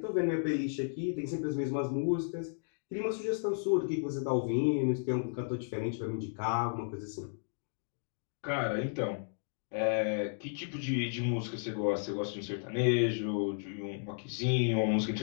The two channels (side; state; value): right; silent; digital silence